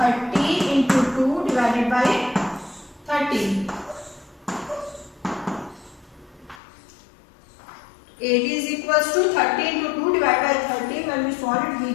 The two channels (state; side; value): drops out; right; at 6.6 s